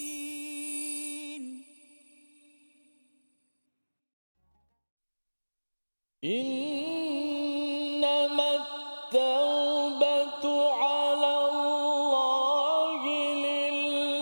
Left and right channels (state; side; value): inverted; both; correlation -1.00